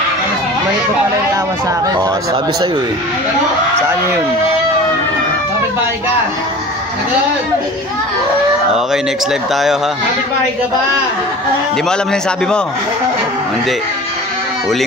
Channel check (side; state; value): both; normal; correlation 0.39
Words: May pa pala yung tawa sa akin. Oh, sabi sa'yo eh. Saan yun? Kapit-bahay ka? Sagot! Okay, next live tayo ha. Kapit-bahay ka ba? Hindi mo alam na yung sabi mo? Hindi.